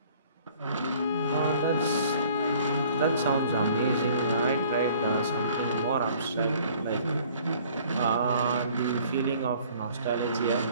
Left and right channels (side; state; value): both; inverted; correlation -0.54